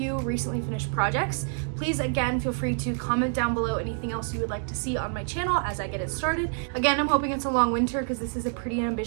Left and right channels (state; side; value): silent; left; 60 dB below the other